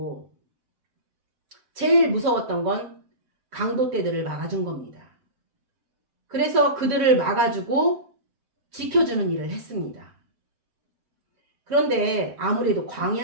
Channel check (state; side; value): late; left; 7.7 ms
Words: 제일 무서웠던 건 강도떼들을 막아준 겁니다. 그래서 그들을 막아주고 지켜주는 일을 했습니다. 그런데 아무래도